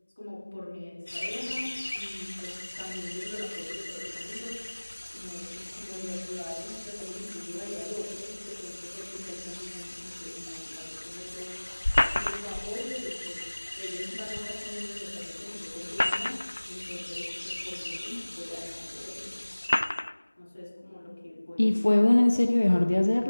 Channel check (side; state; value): both; inverted; correlation -1.00